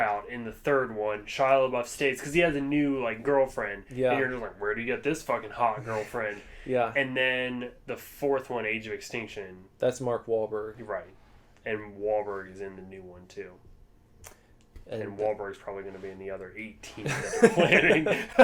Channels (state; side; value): identical; both; correlation 1.00